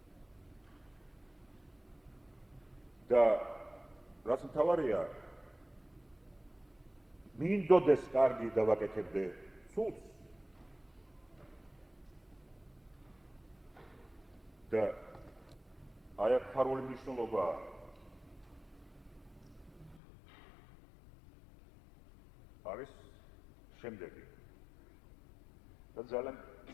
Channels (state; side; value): drops out; right; at 20.0 s